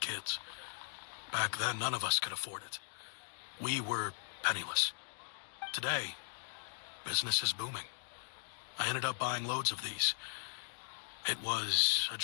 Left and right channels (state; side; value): silent; right; digital silence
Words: Back then, none of us could afford it. We were penniless. Today, business is booming. I ended up buying loads of these. It was a